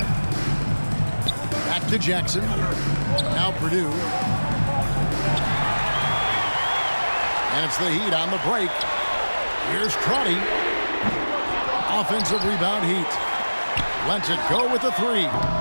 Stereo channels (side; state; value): both; inverted; correlation -1.00